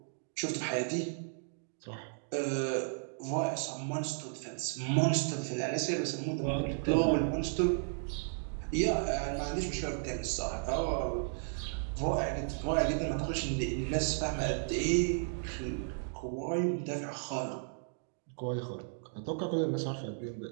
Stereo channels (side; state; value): left; silent; digital silence